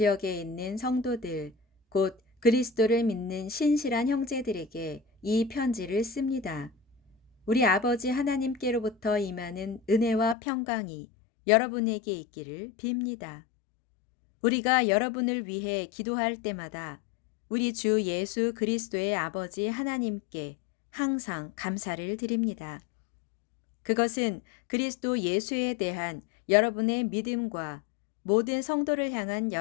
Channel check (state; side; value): drops out; right; at 10.4 s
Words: 있는 성도들, 곧 그리스도를 믿는 신실한 형제들에게 이 편지를 씁니다. 우리 아버지 하나님께로부터 임하는 은혜와 평강이 여러분에게 있기를 빕니다. 우리가 여러분을 위해 기도할 때마다 우리 주 예수 그리스도의 아버지 하나님께 항상 감사를 드립니다. 그것은 그리스도 예수에 대한 여러분의 믿음과 모든 성도를 향한